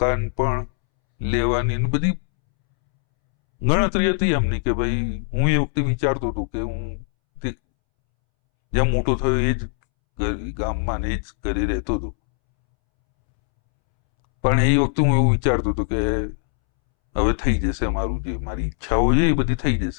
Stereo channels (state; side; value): silent; right; 65 dB below the other